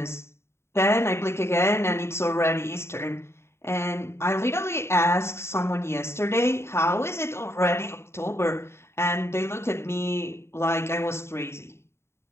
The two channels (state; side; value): late; right; 0.12 ms